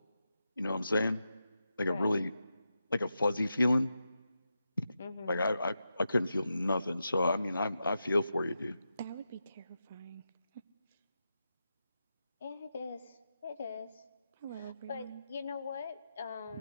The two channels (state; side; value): inverted; both; correlation -0.88